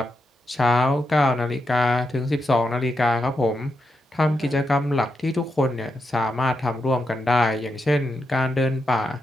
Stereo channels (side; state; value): both; normal; correlation 0.85